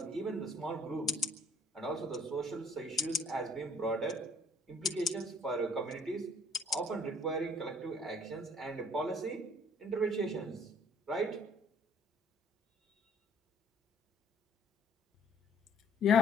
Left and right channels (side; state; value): both; normal; correlation 0.58